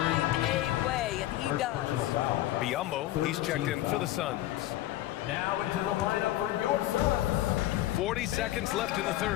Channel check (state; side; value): quieter; right; 15.1 dB